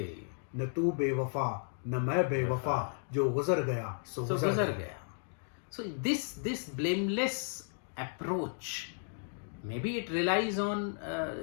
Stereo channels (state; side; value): silent; right; digital silence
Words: न तू बेवफा, न मैं बेवफा, जो गुजर गया सो गुजर गया." So this blameless approach, maybe it relies on